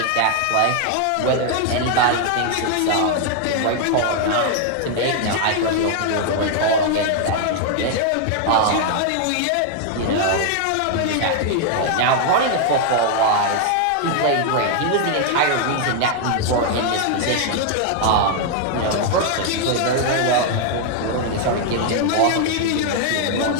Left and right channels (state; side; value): different; both; correlation 0.00